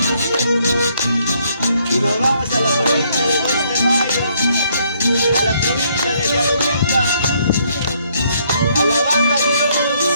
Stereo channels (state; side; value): inverted; both; correlation -0.69